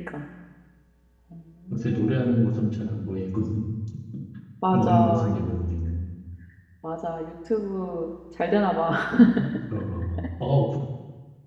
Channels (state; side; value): identical; both; correlation 1.00